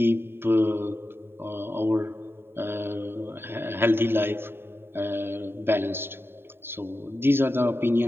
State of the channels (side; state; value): left; late; 0.11 ms